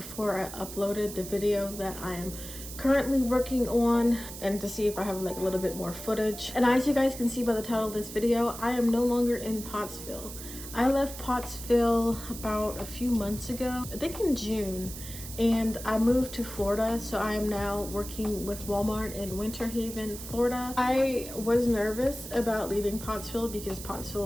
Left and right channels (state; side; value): noise; right; hiss, 11 dB below the sound